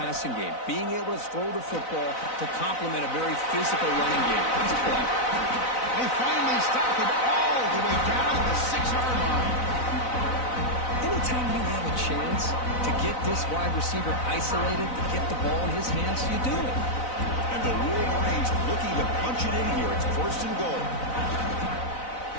game, being able to throw the football to complement a very physical running game. Nice play. They finally stop him all the way down the 6-yard line. Anytime you have a chance to get this wide receiver isolated, to get the ball in his hands, you do it. And the Wolverines looking to punch it in here. It's first and goal.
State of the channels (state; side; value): late; right; 4.0 ms